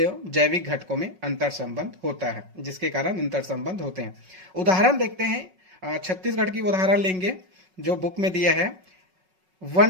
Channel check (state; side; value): late; left; 5.4 ms